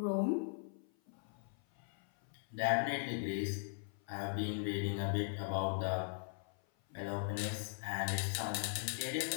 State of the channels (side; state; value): right; silent; 51 dB below the other